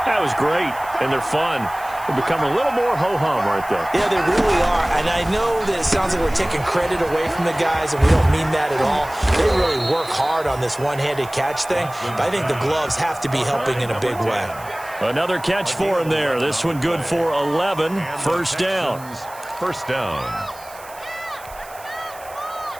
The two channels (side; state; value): right; noise; hiss, 20 dB below the sound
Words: that was great, and they're fun. They become a little more ho-hum, aren't they? Yeah, they really are. And I know that it sounds like we're taking credit away from the guys, and we don't mean that at all. They really work hard on this one-handed catch thing, but I think the gloves have to be helping in a big way. Another catch for him there. This one good for 11. First down. First down.